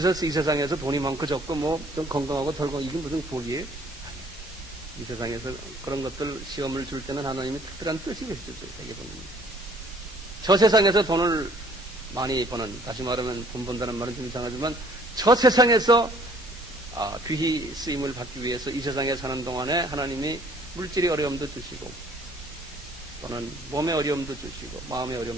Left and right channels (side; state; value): both; normal; correlation 0.59